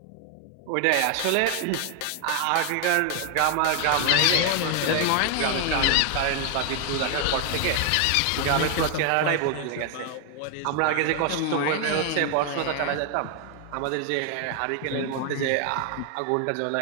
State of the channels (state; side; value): different; both; correlation 0.01